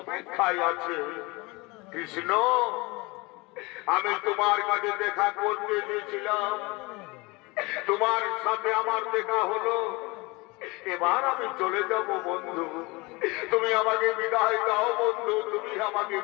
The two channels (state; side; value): quieter; right; 24.9 dB